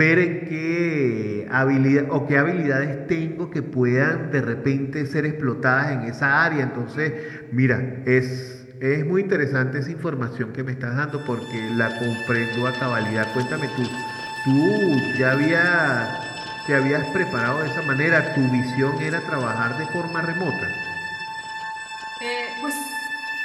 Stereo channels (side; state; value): both; identical; correlation 1.00